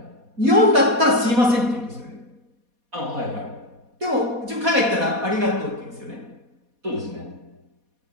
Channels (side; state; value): left; late; 4.2 ms